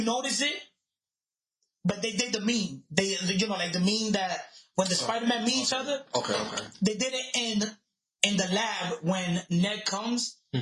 noticed it, but they did the meme. They, you know, like the meme that when the Spider-Man meet each other. Okay. They did it in the lab when Ned comes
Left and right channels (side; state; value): both; identical; correlation 1.00